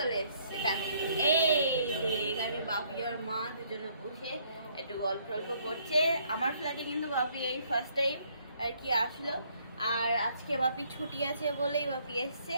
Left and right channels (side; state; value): both; inverted; correlation -0.66